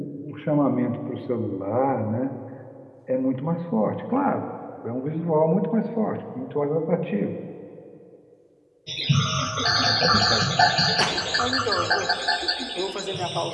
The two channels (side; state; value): both; identical; correlation 1.00